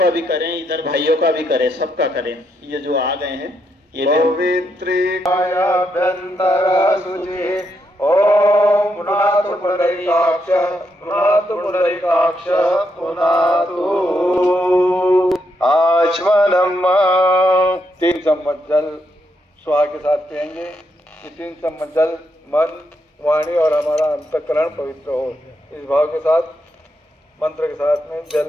भी करें, इधर भाइयों का भी करें, सबका करें। ये जो आ गए हैं ये पवित्रीकायाभ्यन्तर शुचि। ओम पुनातु पुंडरीकाक्ष पुनातु पुंडरीकाक्ष पुनातु आचमनम। 3 चम्मच जल स्वाहा के साथ पिएंगे। ये 3 चम्मच जल मन, वाणी और हमारा अंतःकरण पवित्र हो, इस भाव के साथ मंत्र के साथ में जल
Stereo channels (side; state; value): both; normal; correlation 0.79